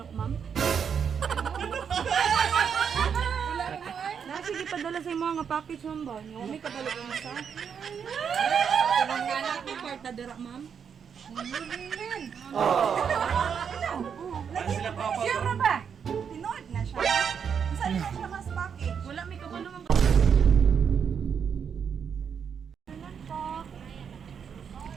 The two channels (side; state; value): left; quieter; 7.2 dB